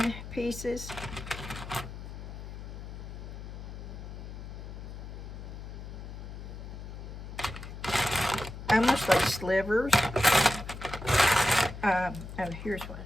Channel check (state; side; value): noise; left; hum, 10 dB below the sound